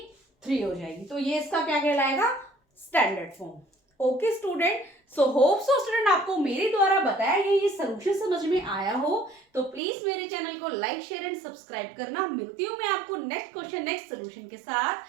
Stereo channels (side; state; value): left; drops out; at 9.8 s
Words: 3 हो जाएगी। तो ये इसका क्या कहलाएगा, standard form. Okay student, so hope so student आपको मेरे द्वारा बताया गया ये सोल्यूशन समझ में आया हो, तो प्लीज मेरे चैनल को लाइक शेयर एंड सब्सक्राइब करना। मिलती हूँ मैं आपको नेक्स्ट क्वेश्चन नेक्स्ट सोल्यूशन के साथ,